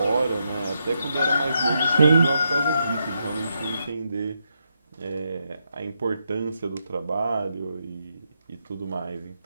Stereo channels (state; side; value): inverted; both; correlation -0.82